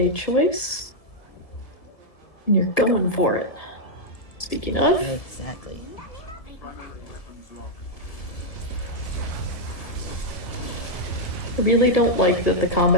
choice, and you're going for it. Speaking of, Exactly. I really don't like that the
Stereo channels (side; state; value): right; late; 1.6 ms